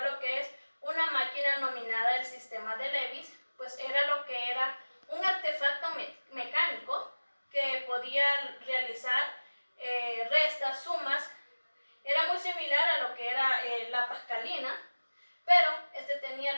que es una máquina nominada el sistema de Leibniz. Pues era lo que era un artefacto mecánico que podía realizar restas, sumas. Era muy similar a lo que era la Pascalina, pero este tenía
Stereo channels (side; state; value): both; inverted; correlation -1.00